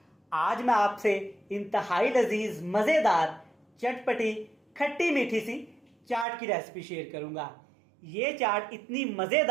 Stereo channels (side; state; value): left; drops out; at 6.2 s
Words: आज मैं आपसे इंतहाई लजीज मज़ेदार चटपटी खट्टी मीठी सी चाट की रेसिपी शेयर करूंगा। ये चाट इतनी